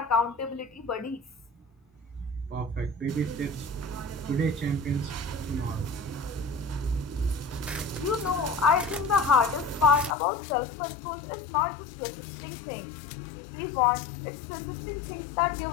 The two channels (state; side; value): drops out; right; at 10.2 s